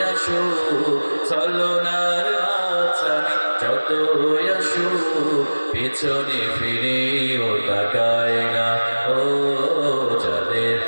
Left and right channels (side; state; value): both; inverted; correlation -1.00